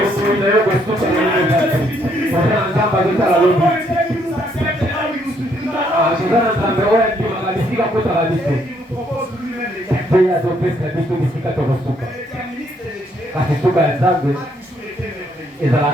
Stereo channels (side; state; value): both; normal; correlation 0.70